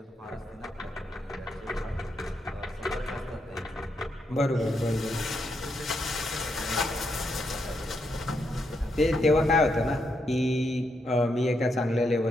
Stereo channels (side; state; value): both; normal; correlation 0.80